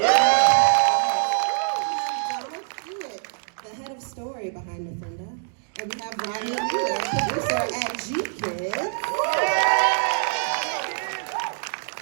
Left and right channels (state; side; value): silent; left; digital silence